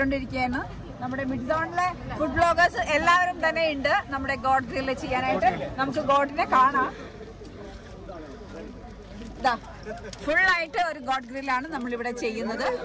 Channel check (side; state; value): both; identical; correlation 1.00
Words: നമ്മുടെ മിഡ് സോണിലെ ഫുഡ് ബ്ലോഗേഴ്സ് എല്ലാവരും തന്നെ ഉണ്ട് നമ്മുടെ ഗോഡ് ഗ്രില്ല് ചെയ്യാനായിട്ട്. നമുക്ക് ഗോഡിനെ കാണാം. ഫുള്ളായിട്ട് ഒരു ഗോഡ് ഗ്രില്ലാണ് നമ്മളിവിടെ ചെയ്യുന്നത്.